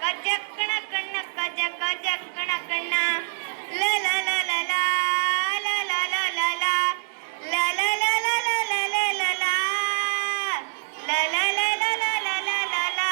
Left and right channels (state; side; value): silent; left; 62 dB below the other